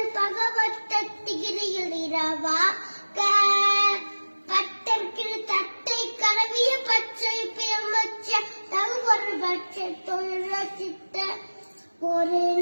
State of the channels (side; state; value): both; inverted; correlation -1.00